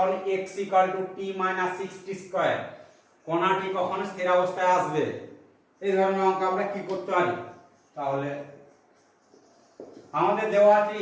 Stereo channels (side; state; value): both; identical; correlation 1.00